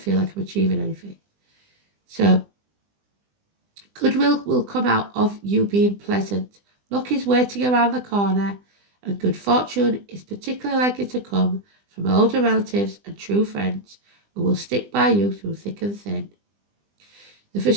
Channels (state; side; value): late; left; 20 ms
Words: like I'm achieving anything. So, goodwill will come out of you being pleasant. Luck is waiting around the corner, and good fortune is particularly likely to come from older relatives and true friends who will stick by you through thick and thin. The